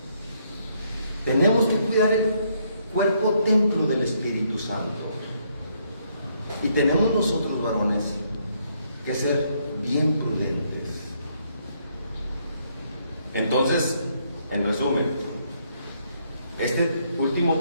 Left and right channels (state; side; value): inverted; both; correlation -0.72